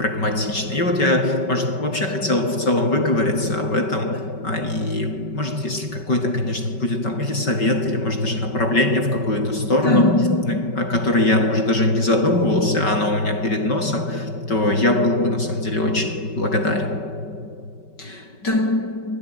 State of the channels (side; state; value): right; late; 5.3 ms